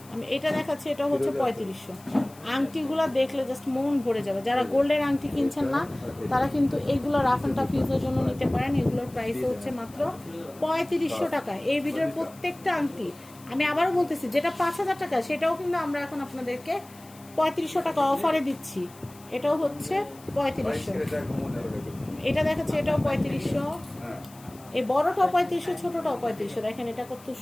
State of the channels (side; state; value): left; noise; hiss, 23 dB below the sound